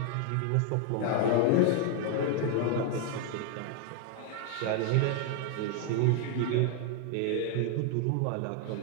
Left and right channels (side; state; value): both; different; correlation 0.00